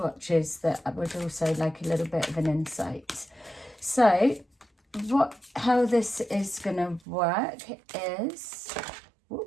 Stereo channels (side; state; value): left; drops out; at 7.0 s